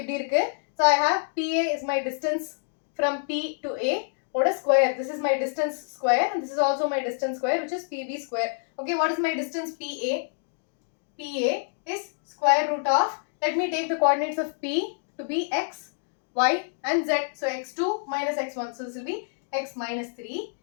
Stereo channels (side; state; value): right; silent; digital silence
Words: so I have PA is my distance from P to A. What is square? This is my distance square and this is also my distance square, which is PB square. Okay, what is my distance PA? PA is square root of, let me take the coordinates of P to be x, y and z. So x2 minus x1. So this will be x minus 3